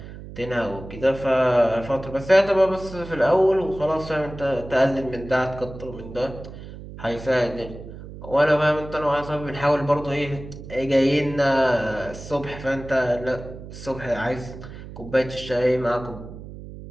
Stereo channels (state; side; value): noise; right; hum, 13 dB below the sound